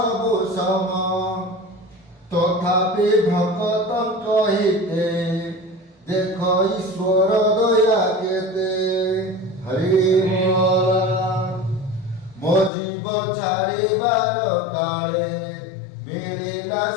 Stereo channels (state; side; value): drops out; right; at 12.7 s